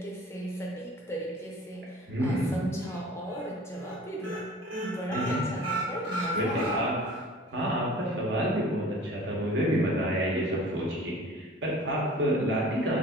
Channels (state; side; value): normal; both; correlation 0.45